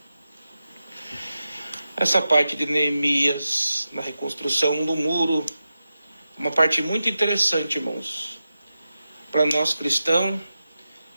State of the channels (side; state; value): both; inverted; correlation -0.91